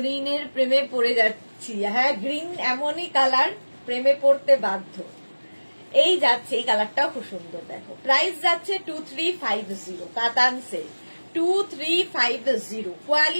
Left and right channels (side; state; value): both; inverted; correlation -1.00